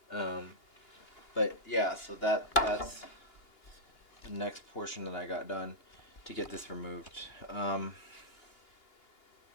But yeah, so that's the next portion that I got done to get this removed.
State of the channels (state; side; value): late; right; 2.8 ms